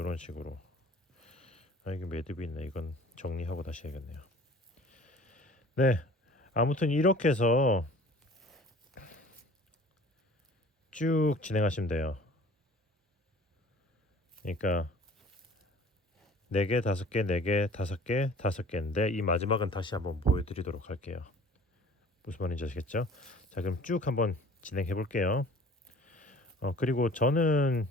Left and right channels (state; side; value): normal; both; correlation 0.48